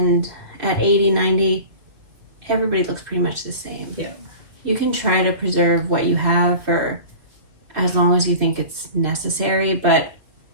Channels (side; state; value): left; late; 2.4 ms